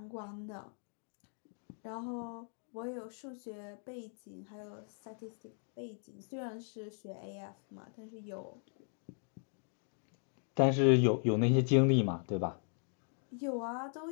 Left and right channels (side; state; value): right; silent; 53 dB below the other